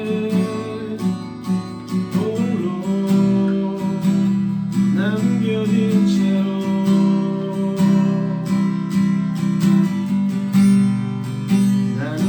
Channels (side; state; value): both; identical; correlation 1.00